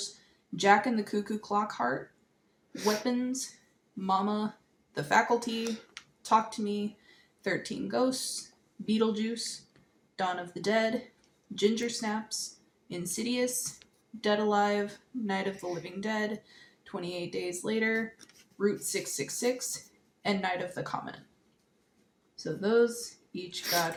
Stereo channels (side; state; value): both; identical; correlation 1.00